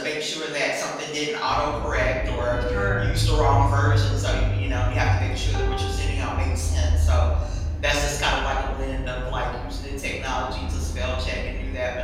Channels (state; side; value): identical; both; correlation 1.00